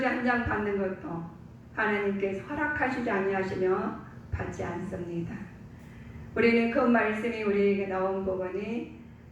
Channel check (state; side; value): identical; both; correlation 1.00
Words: 한 장 받는 것도 하나님께서 허락하시지 아니하시며 받지 않습니다. 우리는 그 말씀이 우리에게 나온 부분이